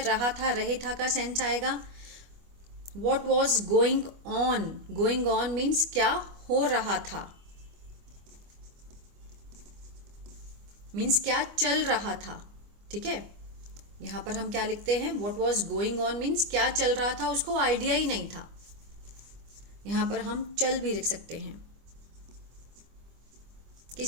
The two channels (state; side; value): late; left; 25 ms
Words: रहा था, रहे था का सेंस आएगा। What was going on, going on means क्या हो रहा था, मीन्स क्या चल रहा था, ठीक है। यहां पर हम क्या लिखते हैं, what was going on means क्या चल रहा था, उसको आइडिया ही नहीं था। यहां पर हम चल भी लिख सकते हैं,